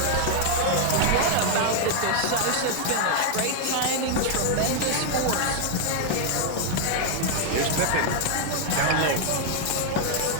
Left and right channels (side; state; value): both; different; correlation 0.00